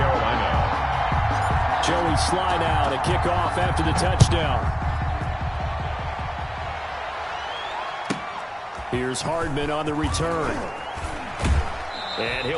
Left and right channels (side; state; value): both; identical; correlation 1.00